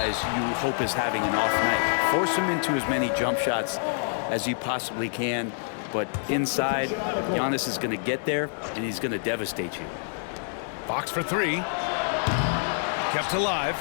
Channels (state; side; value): silent; right; 60 dB below the other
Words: you hope is having an off night. Force him into as many jump shots as you possibly can. But inside, Giannis is going to get there, and he's going to devastate you. Fox for 3. Kept alive.